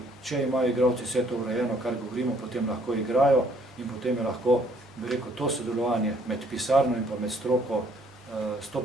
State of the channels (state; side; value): normal; both; correlation 0.64